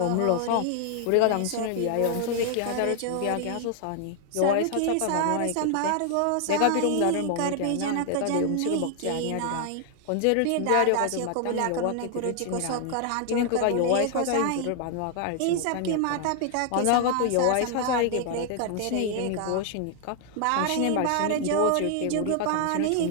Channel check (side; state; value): both; different; correlation 0.00